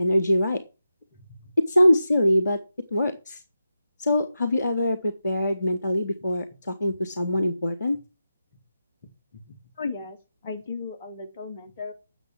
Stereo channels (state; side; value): inverted; both; correlation -0.90